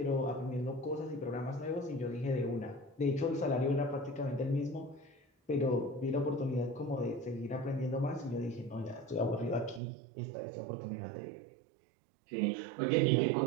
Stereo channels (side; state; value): left; drops out; at 9.8 s